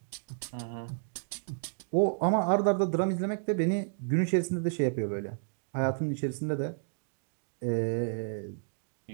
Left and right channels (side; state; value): left; silent; digital silence